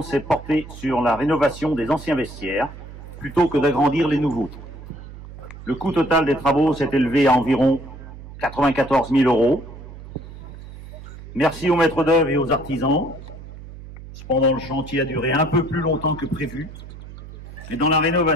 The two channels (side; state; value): right; noise; hum, 15 dB below the sound